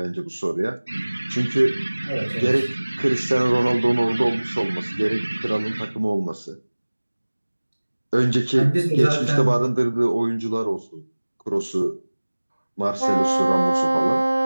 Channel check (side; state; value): both; inverted; correlation -1.00